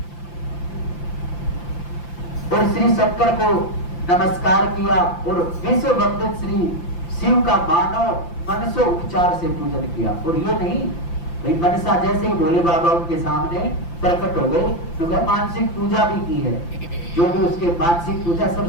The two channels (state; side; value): late; right; 5.8 ms